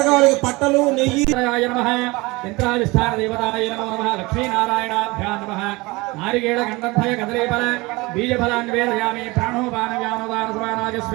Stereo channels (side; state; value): left; quieter; 23.3 dB